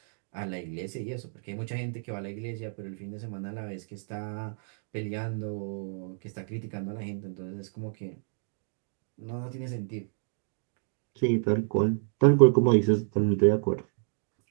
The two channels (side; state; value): left; silent; digital silence